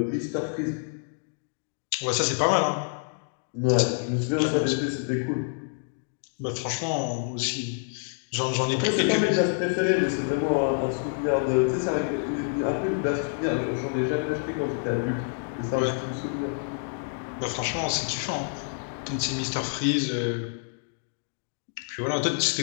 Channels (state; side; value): silent; right; digital silence